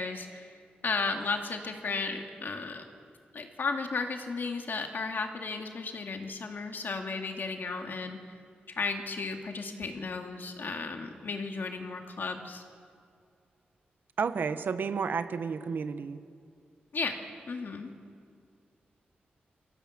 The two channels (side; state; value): both; normal; correlation 0.58